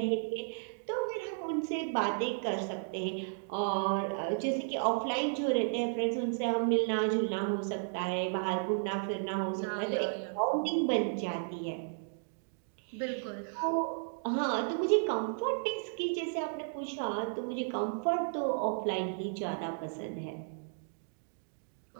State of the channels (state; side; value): silent; left; digital silence